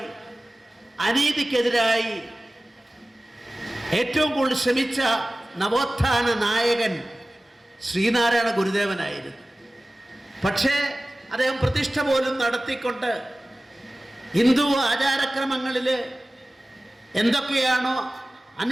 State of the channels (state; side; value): normal; both; correlation 0.97